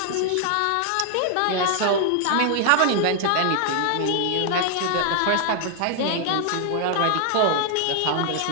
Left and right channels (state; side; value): different; both; correlation 0.00